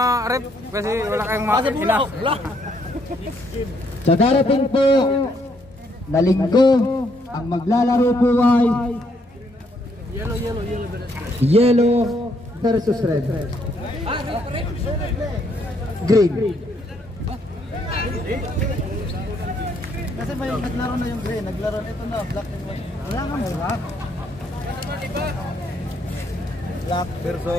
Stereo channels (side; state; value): both; normal; correlation 0.71